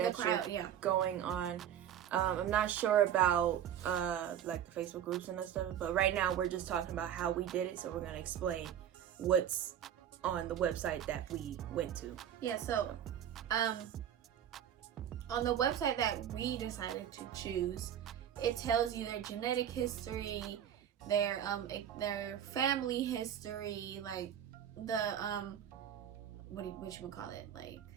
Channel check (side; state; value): left; quieter; 9.9 dB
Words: you're going on. I'm not sure about like the Facebook groups and that stuff, but right now we're just talking about how we did it, so we're going to explain what's on the website that we went to. Yeah, so on the website that we decided to choose, it tells you their genetic history, their family history, like the what you call it, like